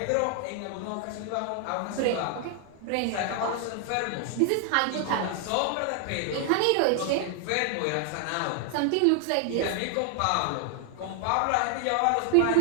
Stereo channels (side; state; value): both; different; correlation 0.00